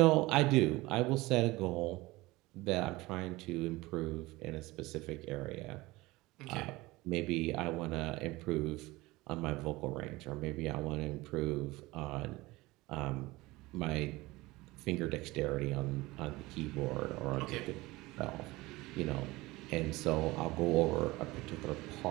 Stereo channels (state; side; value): quieter; left; 20.5 dB